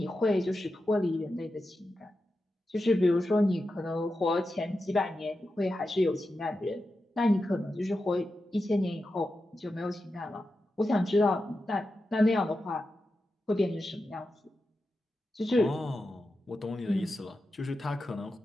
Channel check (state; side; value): normal; both; correlation 0.90